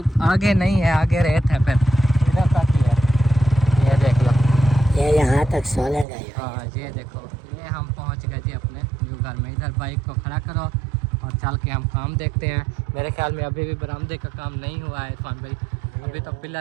आगे नहीं है, आगे रेत है, फिर इधर तक ही है। ये देख लो, ये यहाँ तक सोलंग है। हाँ ये देखो, ये हम पहुंच गए जी अपने न्यू घर में। इधर बाइक को खड़ा करो और चल के हम काम देखते हैं। मेरे ख्याल में अभी भी बरामदे का काम नहीं हुआ है इरफान भाई, अभी तो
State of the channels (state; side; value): drops out; left; at 6.1 s